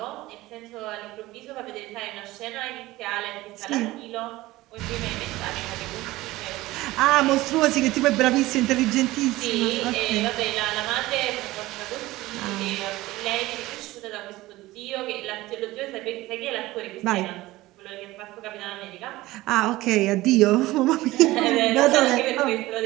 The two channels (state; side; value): quieter; left; 18.2 dB